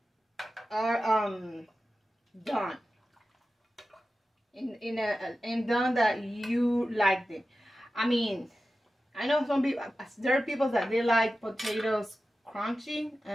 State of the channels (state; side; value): normal; both; correlation 0.94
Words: done in done that you like them. I mean, I know some people, there are people that they like potatoes crunchy